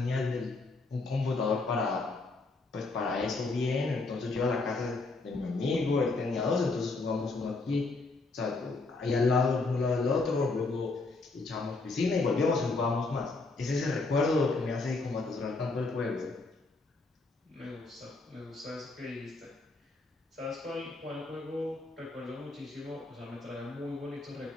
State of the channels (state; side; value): quieter; right; 3.6 dB